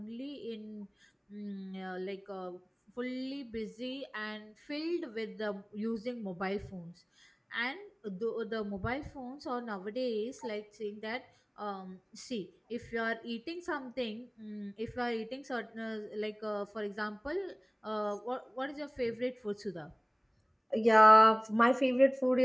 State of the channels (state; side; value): identical; both; correlation 1.00